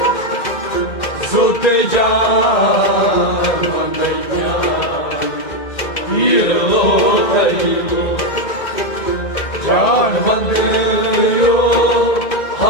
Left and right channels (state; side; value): late; right; 2.1 ms